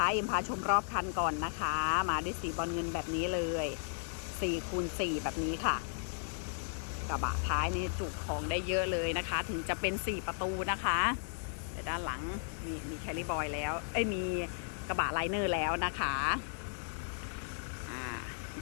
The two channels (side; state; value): right; silent; digital silence